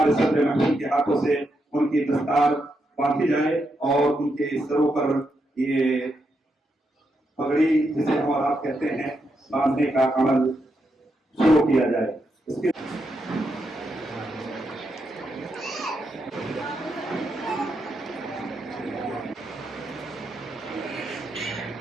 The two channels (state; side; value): normal; both; correlation 0.83